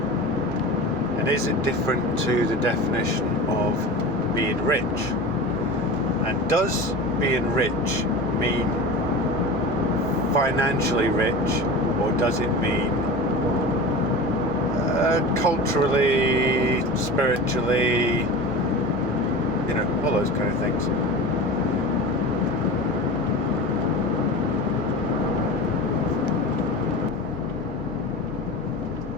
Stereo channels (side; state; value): both; normal; correlation 0.32